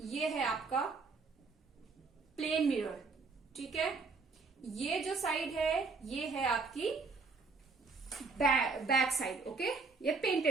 ये है आपका प्लेन मिरर, ठीक है, ये जो साइड है ये है आपकी बैक साइड, ओके, ये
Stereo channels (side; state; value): left; quieter; 4.2 dB